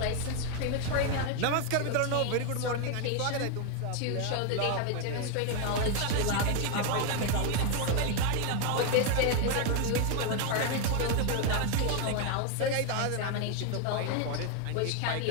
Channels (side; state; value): both; different; correlation 0.01